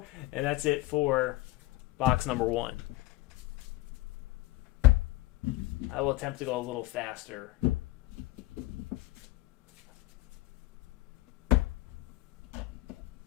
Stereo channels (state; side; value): quieter; right; 19.2 dB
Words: And that's it for box number 1. I will attempt to go a little faster.